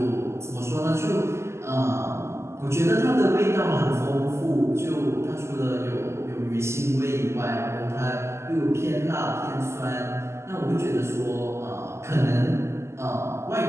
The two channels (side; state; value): left; late; 0.13 ms